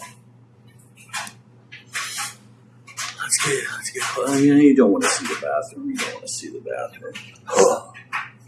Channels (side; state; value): both; identical; correlation 1.00